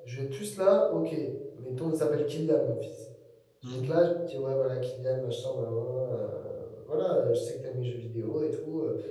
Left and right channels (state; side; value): identical; both; correlation 1.00